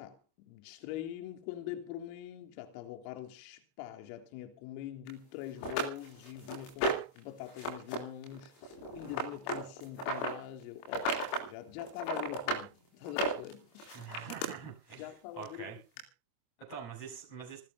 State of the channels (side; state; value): right; late; 26 ms